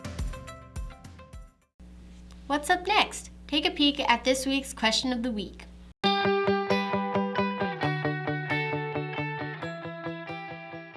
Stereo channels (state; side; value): identical; both; correlation 1.00